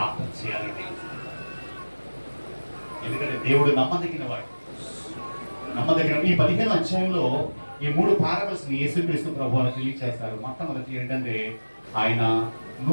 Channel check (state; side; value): inverted; both; correlation -1.00